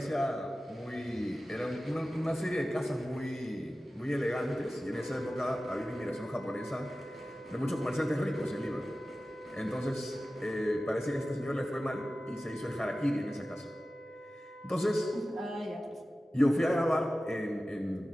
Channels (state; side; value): normal; both; correlation 0.95